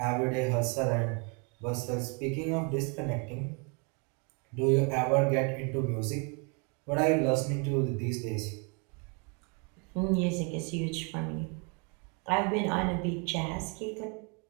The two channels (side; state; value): left; quieter; 35.1 dB